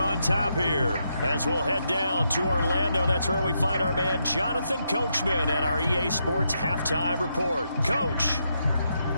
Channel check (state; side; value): inverted; both; correlation -0.81